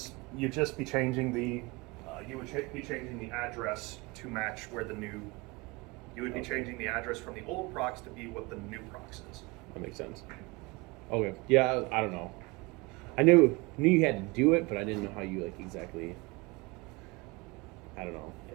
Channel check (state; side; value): quieter; left; 25.5 dB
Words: You'd just be changing the be changing the address to match where the new. You would be changing the address from the old procs to be what the new procs is. That makes sense. Okay. Yeah, I don't know. I knew you had to do it, but I didn't know how you like exactly. I don't know.